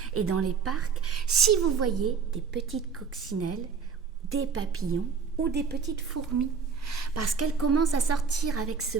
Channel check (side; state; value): left; quieter; 5.8 dB